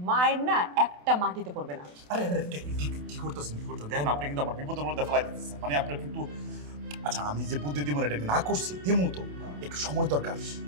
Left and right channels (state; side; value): late; left; 28 ms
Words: মায়ের না একটা মাটিতে পড়বে না। আরে কি করতেছেন? দেখেন আপনি কিন্তু আমার বিপদের মধ্যে ফেলাই দিতেছেন, মানে আপনার কিন্তু। আচ্ছা আমি যে বুদ্ধি দিব এটা না করছি, দিমু তো, একটু সময় দরকার।